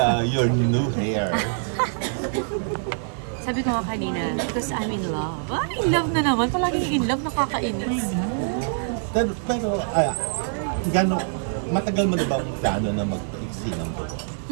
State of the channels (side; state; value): left; silent; digital silence